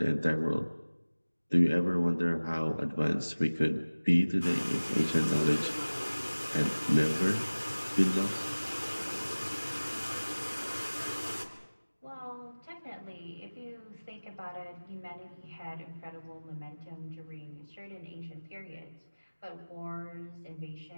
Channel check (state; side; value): inverted; both; correlation -1.00